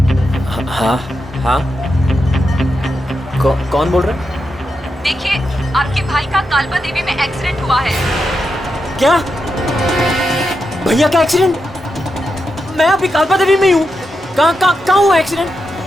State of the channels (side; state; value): both; normal; correlation 0.86